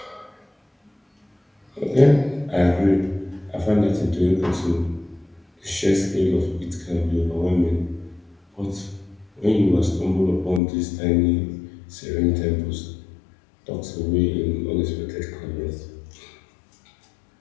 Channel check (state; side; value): drops out; right; at 10.6 s